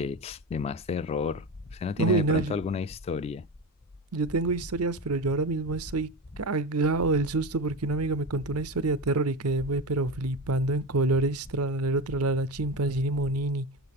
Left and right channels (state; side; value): normal; both; correlation 0.22